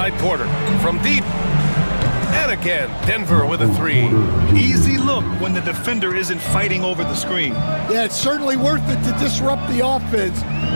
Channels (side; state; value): both; inverted; correlation -1.00